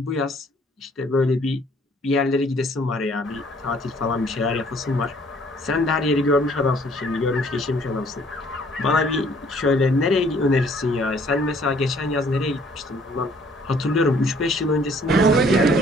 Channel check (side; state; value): both; normal; correlation 0.60